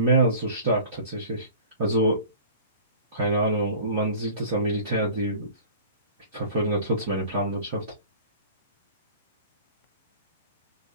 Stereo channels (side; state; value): both; inverted; correlation -0.43